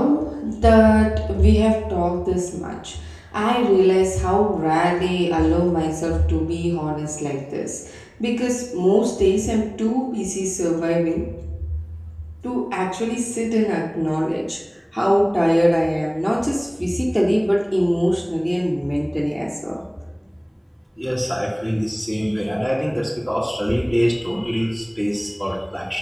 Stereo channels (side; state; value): both; identical; correlation 1.00